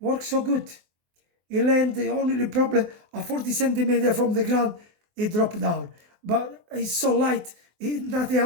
so good. He landed only probably a 40 centimeter from the ground, it dropped down. But it's so light, nothing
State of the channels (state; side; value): late; left; 24 ms